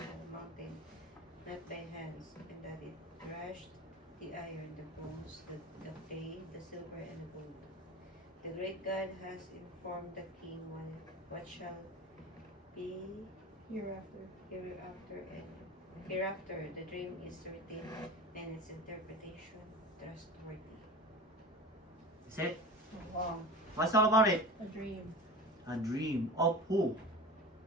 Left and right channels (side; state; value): both; normal; correlation 0.33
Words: mountain, not by hands, and that it crushed the iron, the bones, the clay, the silver, and the gold. The great God has informed the king what shall be Hereafter. hereafter. The dream is written, and its interpretation trustworthy. Is it? Wow. What's all about it? A dream. A dream of who?